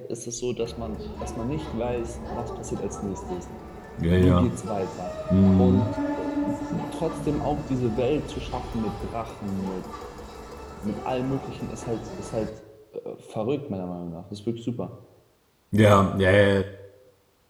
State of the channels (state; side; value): identical; both; correlation 1.00